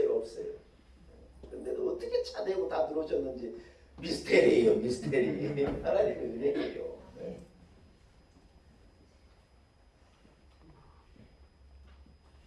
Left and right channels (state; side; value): identical; both; correlation 1.00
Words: 근데도 어떻게 차대고 다 들어오셨는지 미스테리예요, 미스테리. 하나님의 은혜예요. 네.